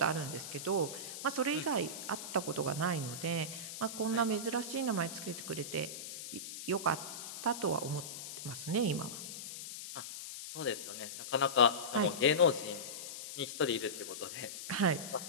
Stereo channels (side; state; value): left; noise; hiss, 9 dB below the sound